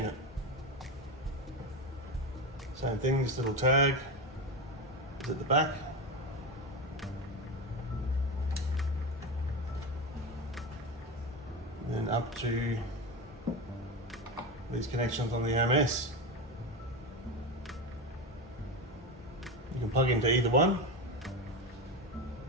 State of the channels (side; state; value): both; normal; correlation 0.18